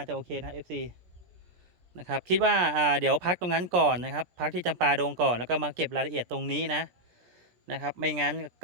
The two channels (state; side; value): late; left; 17 ms